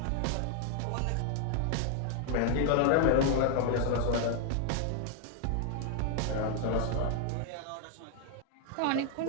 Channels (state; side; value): different; both; correlation 0.00